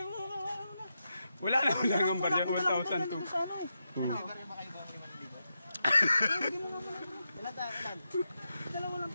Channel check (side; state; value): both; inverted; correlation -0.86